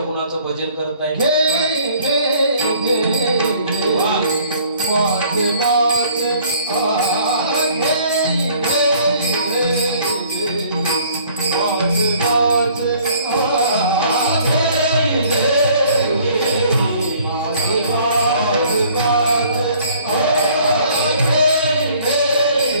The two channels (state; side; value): inverted; both; correlation -0.57